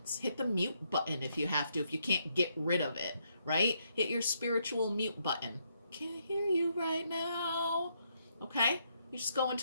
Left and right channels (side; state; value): both; inverted; correlation -0.76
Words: Hit the mute button if you have to, if you can't get rid of it, right? Hit your spiritual mute button. Can't hear you right now, okay? You just go